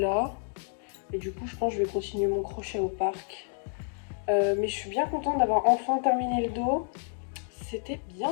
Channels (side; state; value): right; silent; 58 dB below the other